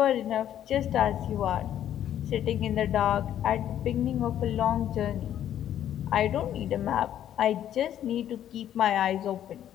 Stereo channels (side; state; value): right; quieter; 10.9 dB